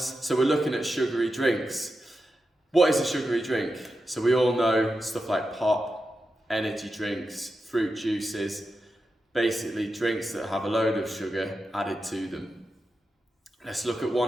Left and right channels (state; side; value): normal; both; correlation 0.89